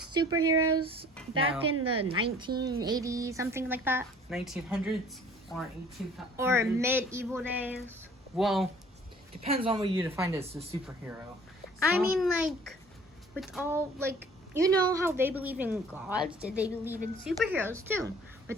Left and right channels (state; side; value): normal; both; correlation 0.52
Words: back in the 1980s, something like that? 1900s or 1800s? Or medieval days? Well, depends on what you define as a superhero. I mean, like, with all, like, you know how they believe in gods? Did they believe in superheroes, too?